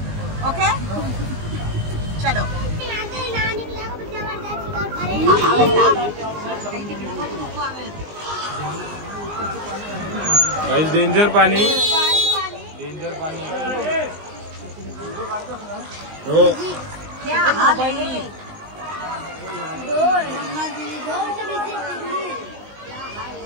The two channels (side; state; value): left; late; 19 ms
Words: ओके चलो. गाइस डेंजर पानी, डेंजर पानी. हो